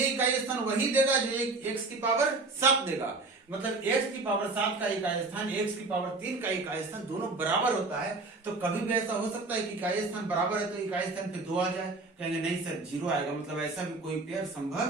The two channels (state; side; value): quieter; left; 3.5 dB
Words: इकाई स्थान वही देगा जो x की पावर 7 देगा। मतलब x की पावर 7 का इकाई स्थान x की पावर 3 का इकाई स्थान दोनों बराबर होता है। तो कभी भी ऐसा हो सकता है कि इकाई स्थान बराबर है तो इकाई स्थान पे 2 आ जाए, कहेंगे नहीं सर 0 आएगा, मतलब ऐसा भी कोई पेयर